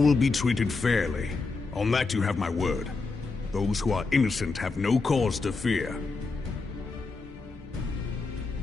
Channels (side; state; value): right; quieter; 4.0 dB